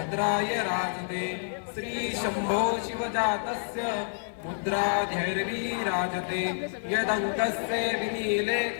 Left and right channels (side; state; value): right; silent; digital silence